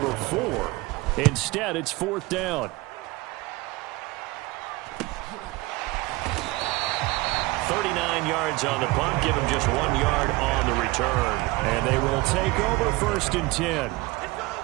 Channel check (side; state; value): left; quieter; 21.8 dB